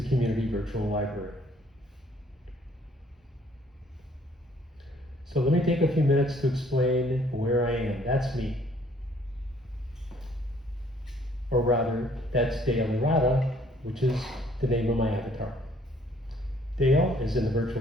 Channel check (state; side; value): normal; both; correlation 0.61